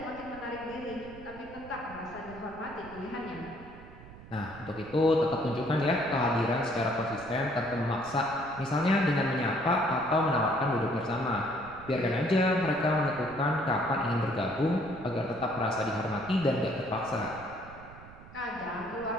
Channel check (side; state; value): right; noise; rumble, 18 dB below the sound